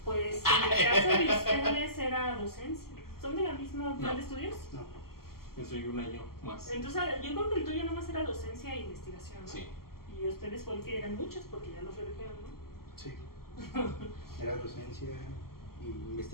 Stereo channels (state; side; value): late; right; 0.93 ms